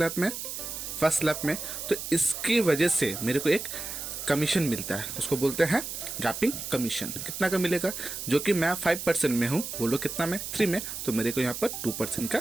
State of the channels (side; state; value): right; noise; hiss, 7 dB below the sound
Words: में, फर्स्ट स्लैब में, तो इसकी वजह से मेरे को एक कमीशन मिलता है, उसको बोलते हैं गैपिंग कमीशन। कितना का मिलेगा, जो कि मैं 5% में हूँ, वो लोग कितना में, 3 में, तो मेरे को यहाँ पर 2% का